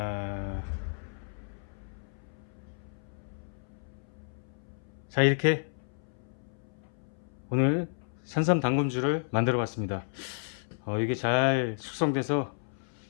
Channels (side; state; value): right; silent; 57 dB below the other